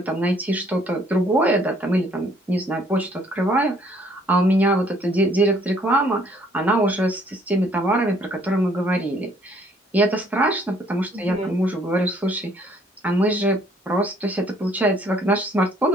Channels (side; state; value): both; normal; correlation 0.62